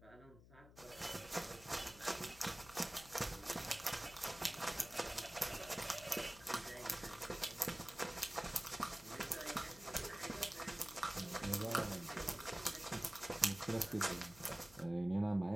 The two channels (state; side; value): noise; left; hum, 20 dB below the sound